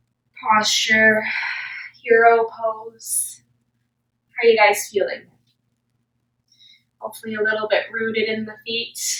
posture. Hero pose. How are you guys feeling? Hopefully a little bit rooted in the feet.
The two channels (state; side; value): identical; both; correlation 1.00